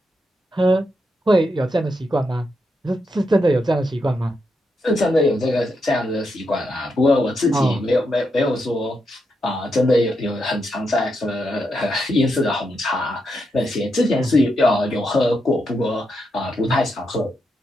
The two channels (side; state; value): both; normal; correlation 0.83